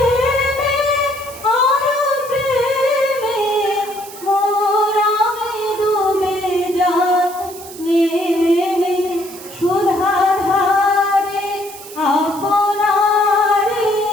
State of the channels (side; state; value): right; noise; hiss, 16 dB below the sound